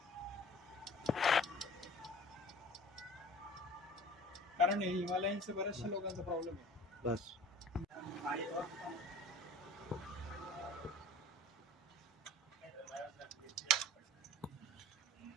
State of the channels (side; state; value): both; normal; correlation 0.45